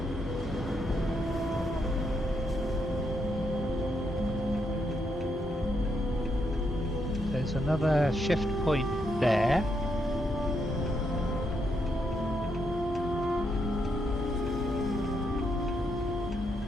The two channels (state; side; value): normal; both; correlation 0.79